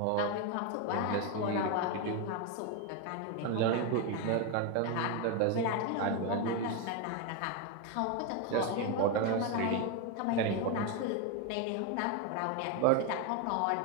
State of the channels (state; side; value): different; both; correlation 0.02